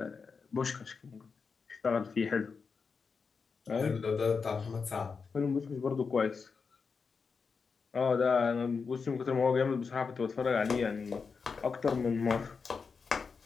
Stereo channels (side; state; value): right; quieter; 5.2 dB